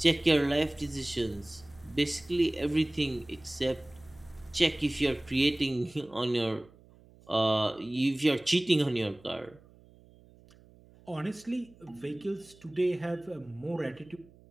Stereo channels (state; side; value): noise; right; hum, 26 dB below the sound